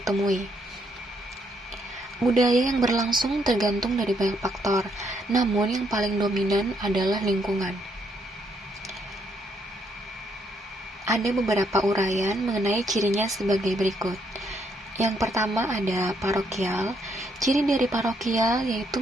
Budaya yang berlangsung tergantung dari banyak faktor, namun yang paling dominan adalah lingkungan. Ada beberapa uraian mengenai cirinya sebagai berikut. Yang pertama ada parokial. Ciri dari parokial yaitu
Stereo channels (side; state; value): both; normal; correlation 0.73